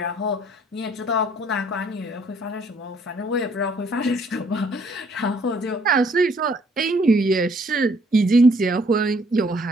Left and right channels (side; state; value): both; normal; correlation 0.64